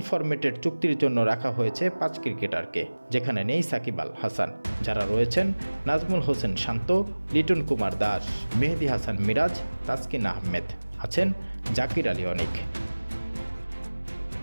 ফরম্যাটের চুক্তির জন্য রাখা হয়েছে ৫ ক্রিকেটারকে, যেখানে নেই সাকিব আল হাসান। যারা রয়েছেন নাজমুল হোসেন শান্ত, লিটন কুমার দাস, মেহেদী হাসান মিরাজ, তাসকিন আহমেদ, আছেন জাকির আলী অনিক।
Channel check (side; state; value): both; inverted; correlation -1.00